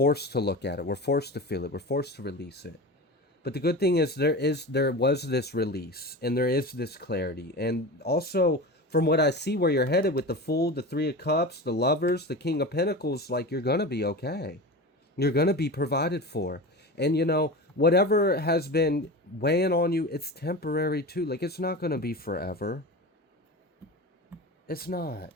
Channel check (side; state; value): both; normal; correlation 0.29